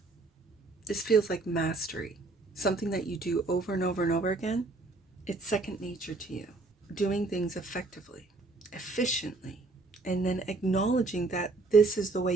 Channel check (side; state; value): left; quieter; 3.4 dB